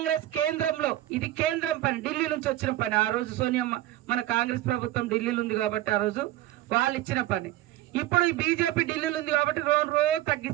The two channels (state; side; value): quieter; left; 15.0 dB